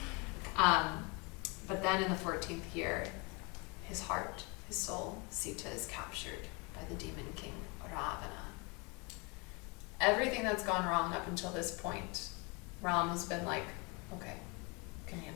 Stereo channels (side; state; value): right; quieter; 29.9 dB